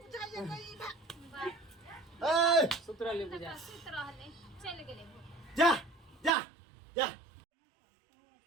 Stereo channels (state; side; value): drops out; left; at 6.4 s